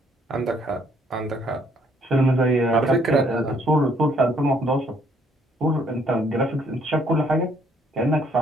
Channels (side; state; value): both; normal; correlation 0.66